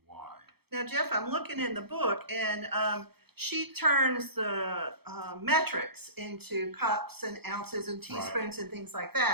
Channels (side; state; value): left; late; 0.96 ms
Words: Now, Jeff, I'm looking in the book, and she turns the metrics into cups and ounces and teaspoons and things like